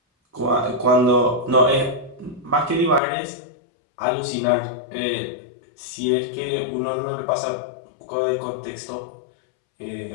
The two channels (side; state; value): right; drops out; at 3.0 s